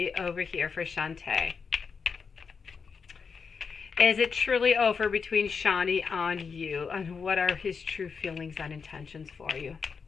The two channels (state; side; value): quieter; right; 5.6 dB